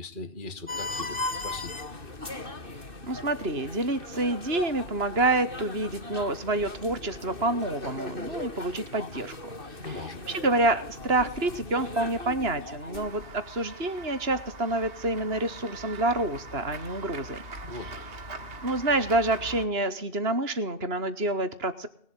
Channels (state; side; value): late; left; 2.6 ms